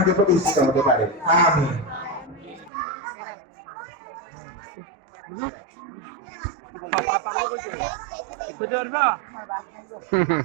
প্রতিষ্ঠিত হতে পারে। আমিন।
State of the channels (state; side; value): drops out; left; at 2.7 s